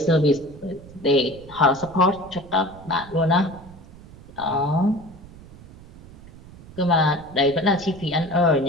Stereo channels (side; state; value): right; noise; rumble, 19 dB below the sound